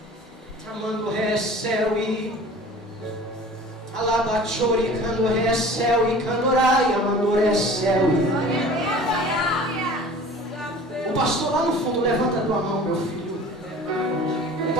Amando recel e alabachori, cando recel e candorai, amando recel. O pastor lá no fundo, levanta a tua mão, meu filho. O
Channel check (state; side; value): normal; both; correlation 0.44